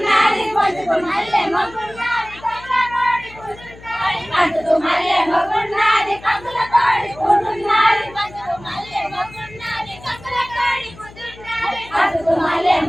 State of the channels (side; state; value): left; noise; hum, 20 dB below the sound